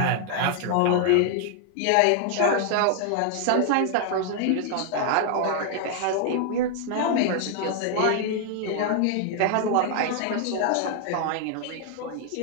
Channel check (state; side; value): different; both; correlation 0.00